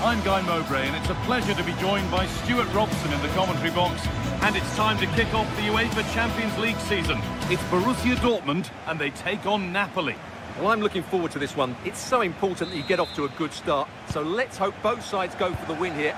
Guy Mowbray, and it's a pleasure to be joined by Stuart Robson in the commentary box. And it's time to kick off the UEFA Champions League season. It's Borussia Dortmund, and they take on Napoli. Well, I'm looking forward to this one. It's so important that you get off to a good start. So let's hope both sides go for the win here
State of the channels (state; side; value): identical; both; correlation 1.00